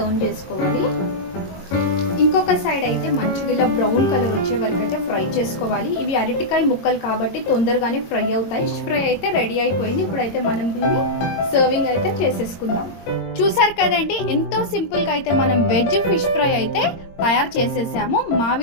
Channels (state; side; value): late; right; 22 ms